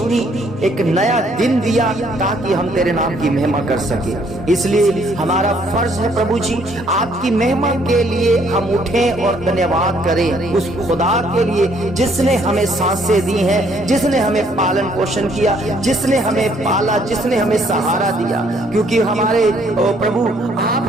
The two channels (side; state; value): both; normal; correlation 0.65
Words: एक नया दिन दिया ताकि हम तेरे नाम की महिमा कर सके। इसलिए हमारा फर्ज है प्रभु जी, आपकी महिमा के लिए हम उठें और धन्यवाद करें उस खुदा के लिए जिसने हमें सांसें दी हैं, जिसने हमें पालन पोषण किया, जिसने हमें पाला, जिसने हमें सहारा दिया। क्योंकि हमारे प्रभु आप